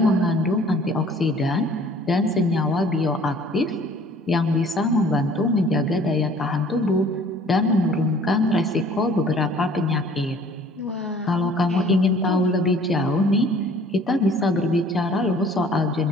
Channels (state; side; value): normal; both; correlation 0.53